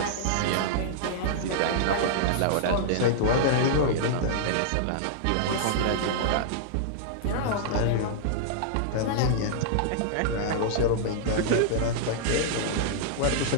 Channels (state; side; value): different; both; correlation -0.02